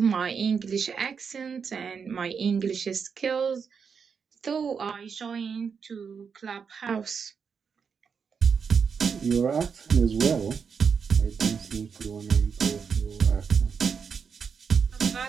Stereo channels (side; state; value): left; quieter; 6.2 dB